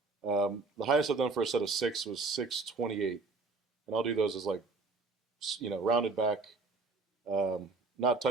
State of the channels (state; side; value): quieter; left; 3.9 dB